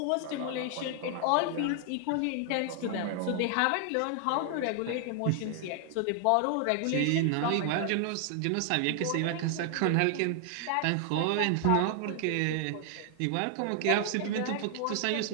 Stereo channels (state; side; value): different; both; correlation 0.00